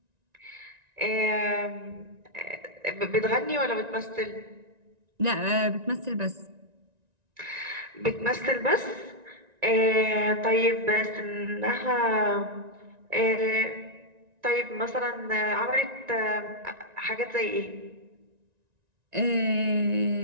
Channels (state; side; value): late; left; 1.9 ms